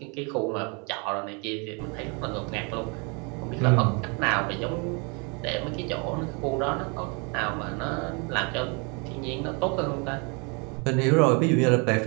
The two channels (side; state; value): left; quieter; 32.9 dB